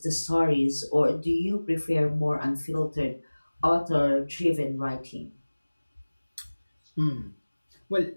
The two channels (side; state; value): both; inverted; correlation -1.00